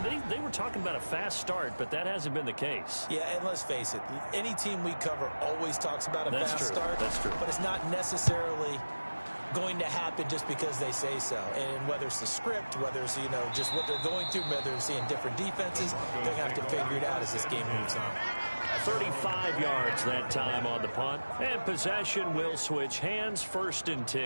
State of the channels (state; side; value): inverted; both; correlation -1.00